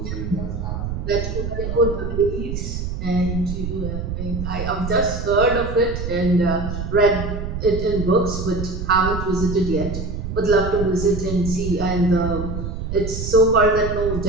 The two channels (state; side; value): noise; right; rumble, 5 dB below the sound